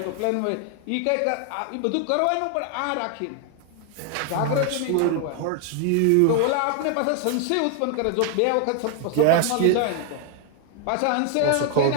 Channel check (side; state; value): both; different; correlation 0.00